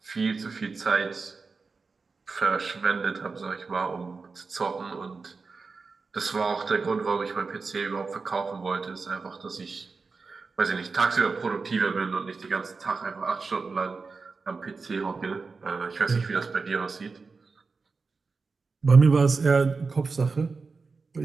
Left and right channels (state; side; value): quieter; left; 4.4 dB